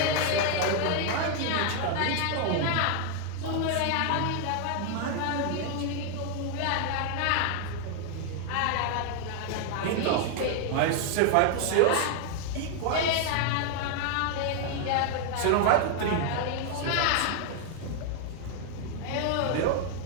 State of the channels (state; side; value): different; both; correlation 0.00